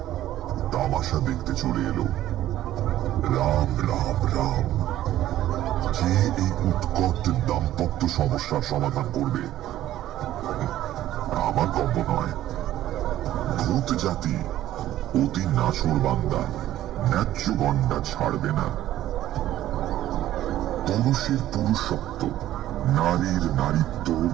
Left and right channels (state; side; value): quieter; left; 13.4 dB